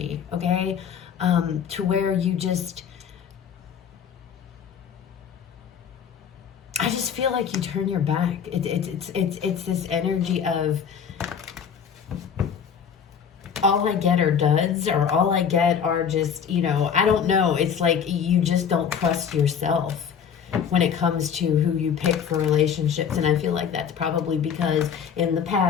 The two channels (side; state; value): right; quieter; 7.5 dB